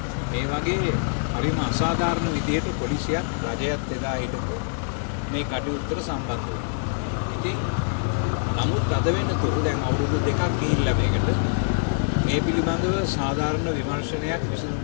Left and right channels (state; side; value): silent; right; digital silence